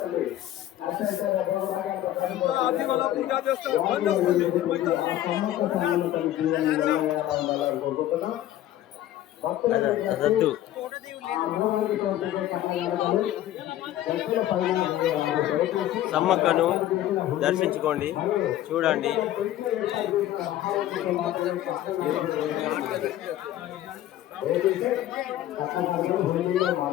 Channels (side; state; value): right; quieter; 13.1 dB